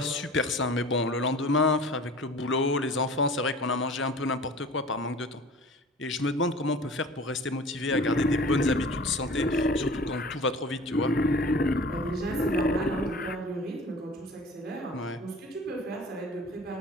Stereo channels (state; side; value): normal; both; correlation 0.42